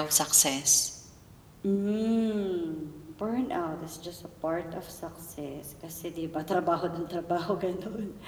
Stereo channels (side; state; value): both; identical; correlation 1.00